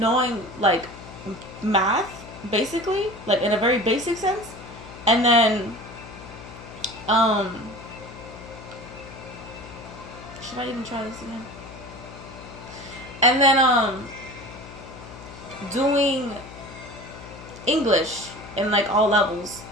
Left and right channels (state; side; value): noise; left; hum, 16 dB below the sound